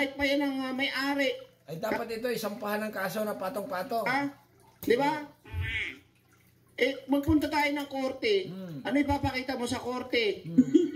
pa yan ang may-ari. Ay, dapat ito isampahan ng kaso na patong-patong. Di ba? Magpunta tayo ng korte. Ano ipapakita mo sa korte?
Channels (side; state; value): both; identical; correlation 1.00